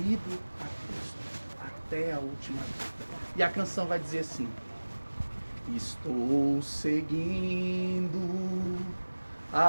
a Cristo, até a última vida. E a canção vai dizer assim: estou seguindo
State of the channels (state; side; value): inverted; both; correlation -1.00